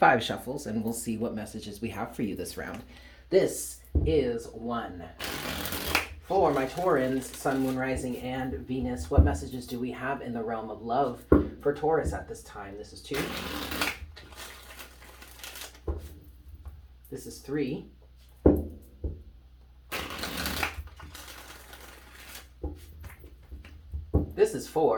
shuffles, and we'll see what messages we have for you this round. This is 1. For my Taurans, Sun, Moon, Rising, and Venus, what messages do we have in the realm of love for Taurus at this time? This is 2. This is 3. This is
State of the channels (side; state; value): both; identical; correlation 1.00